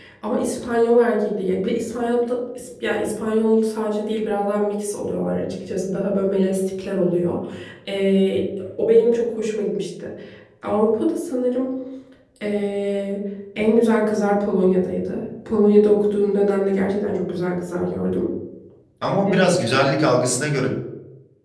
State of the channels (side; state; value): both; identical; correlation 1.00